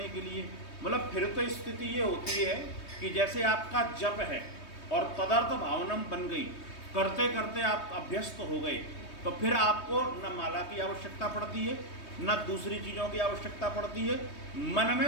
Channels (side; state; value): right; late; 3.2 ms